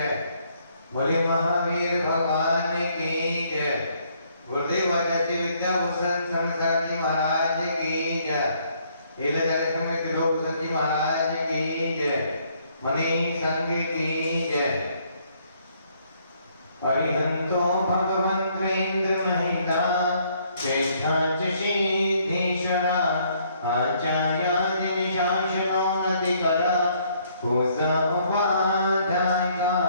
बोले महावीर भगवान की जय। गुरुदेव आचार्य विद्याभूषण शंकर जी महाराज की जय। एल त्रिलोक जी महाराज की जय। मणि संघ की जय। अरिहंतो भगवन्तेन्द्र महिता ज्येष्ठाच सिद्धीश्वरा आचार्यादि शासनो नदिकर पूजा उपाध्यायिका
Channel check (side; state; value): both; inverted; correlation -0.67